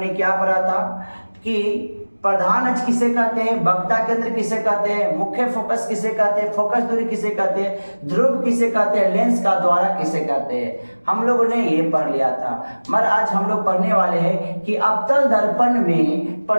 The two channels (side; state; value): both; inverted; correlation -1.00